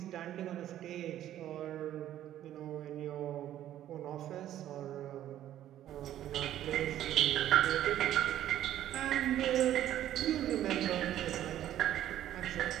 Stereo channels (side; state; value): left; quieter; 12.2 dB